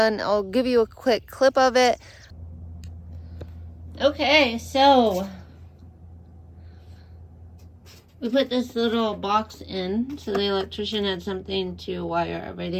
I'll give you a quick clip of it. Okay, so we put this little box in so the electrician had something to wire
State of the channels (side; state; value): both; identical; correlation 1.00